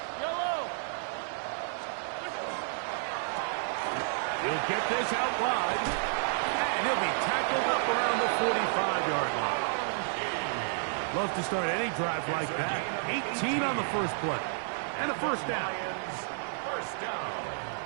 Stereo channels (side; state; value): left; silent; 57 dB below the other